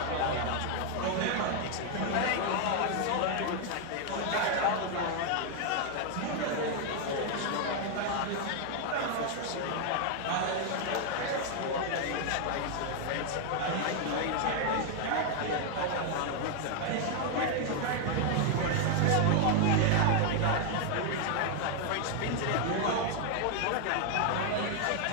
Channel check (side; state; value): both; different; correlation 0.00